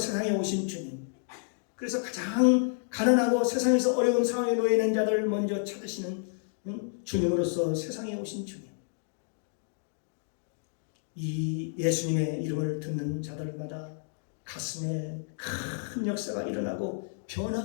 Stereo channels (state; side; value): silent; right; digital silence